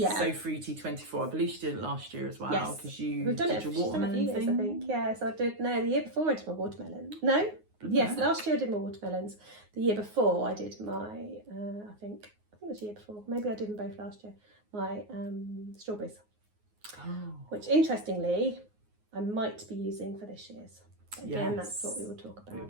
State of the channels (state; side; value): late; left; 9.5 ms